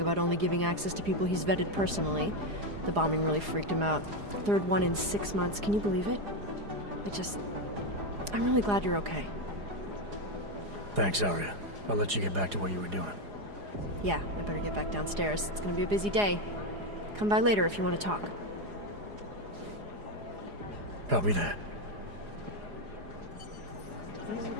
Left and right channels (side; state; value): left; late; 4.9 ms